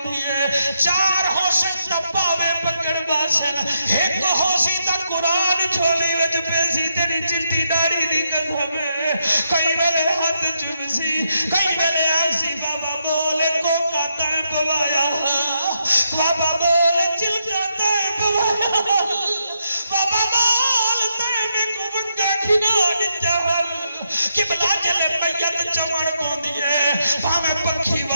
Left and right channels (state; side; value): inverted; both; correlation -0.80